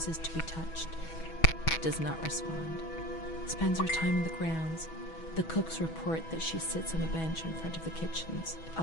to be touched. Does not respond. Spends her time in the grounds. The cooks report that she sits on a bench in front of the kitchens.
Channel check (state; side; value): late; right; 6.2 ms